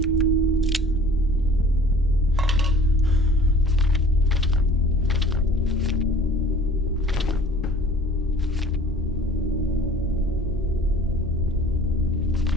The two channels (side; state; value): both; normal; correlation 0.48